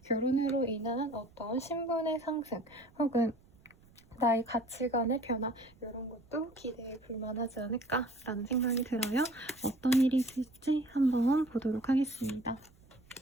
결혼으로 인한 어떤 신분의 상승 혹은 나의 가치관의 변화, 이런 것도 기대해 볼 만하지 않을까라는 생각이 들어요. 어떤 일이 있을지 한번 보도록 하겠습니다.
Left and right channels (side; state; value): right; noise; rumble, 27 dB below the sound